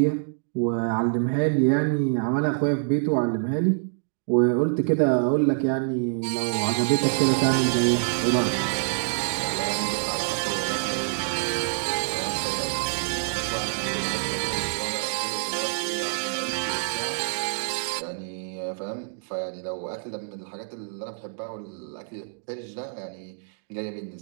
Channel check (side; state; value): left; silent; digital silence